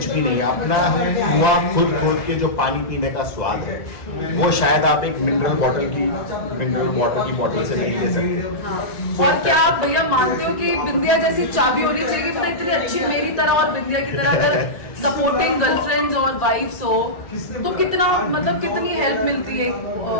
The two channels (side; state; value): right; late; 1.8 ms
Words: भी नहीं है। अपना कुआं खुद खोद के जो पानी पीने का स्वाद है, वो शायद आप एक मिनरल वाटर की बॉटल से नहीं ले सकते। और क्या आप भैया मानते हो कि बिंदिया जैसी चाबी होनी चाहिए, मतलब इतनी अच्छी मेरी तरह और बिंदिया की तरह अगर सपोर्टिंग गर्लफ्रेंड्स और वाइफ्स हो तो कितना, मतलब कितनी हेल्प मिलती है